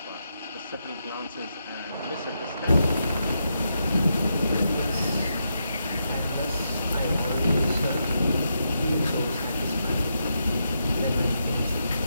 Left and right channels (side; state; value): both; inverted; correlation -0.83